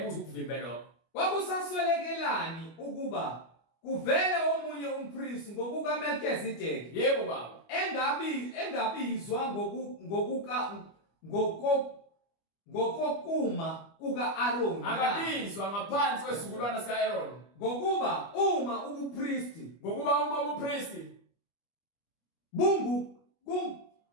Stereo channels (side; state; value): right; late; 25 ms